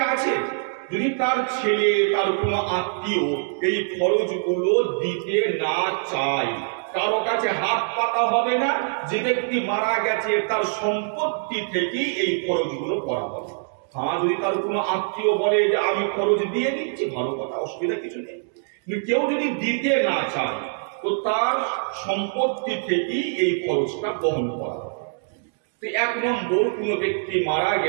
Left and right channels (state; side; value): silent; left; digital silence